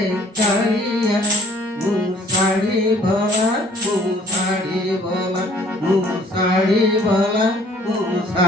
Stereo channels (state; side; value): normal; both; correlation 0.56